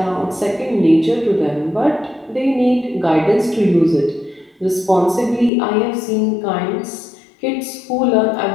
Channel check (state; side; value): drops out; right; at 5.5 s